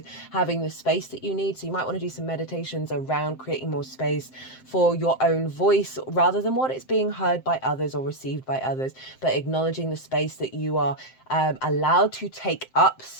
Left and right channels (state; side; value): late; right; 7.7 ms